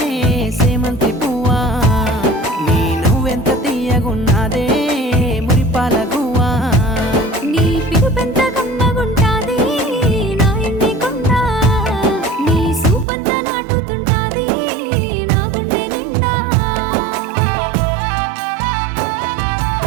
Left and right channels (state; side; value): drops out; left; at 13.1 s